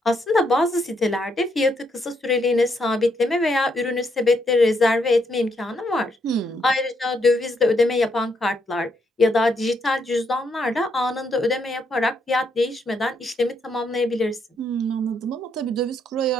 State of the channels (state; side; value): normal; both; correlation 0.76